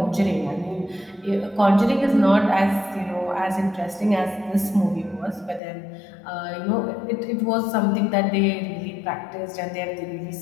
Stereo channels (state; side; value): drops out; right; at 5.6 s